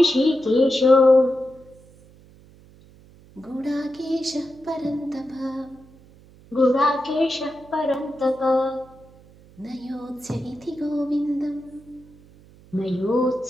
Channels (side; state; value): right; noise; hum, 25 dB below the sound